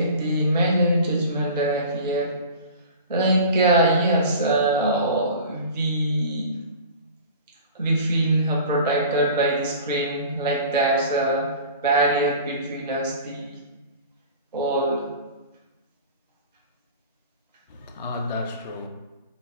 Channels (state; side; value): inverted; both; correlation -0.40